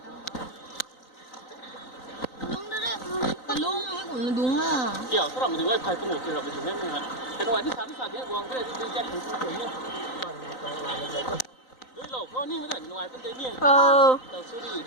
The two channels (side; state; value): right; late; 3.9 ms